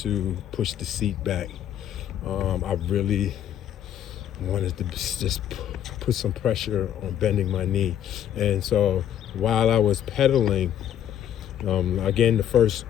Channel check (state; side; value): quieter; right; 10.4 dB